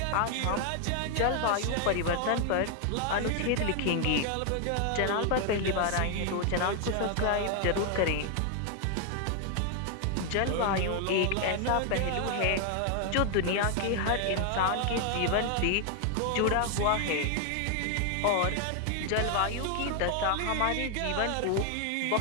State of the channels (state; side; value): different; both; correlation 0.00